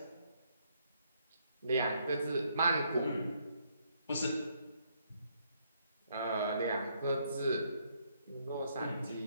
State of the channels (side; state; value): both; inverted; correlation -0.72